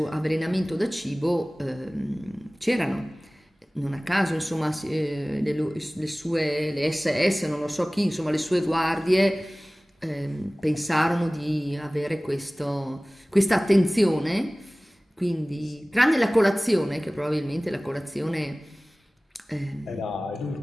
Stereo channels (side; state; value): both; normal; correlation 0.98